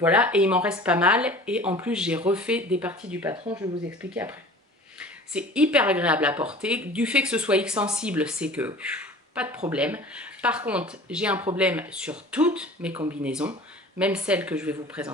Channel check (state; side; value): normal; both; correlation 0.43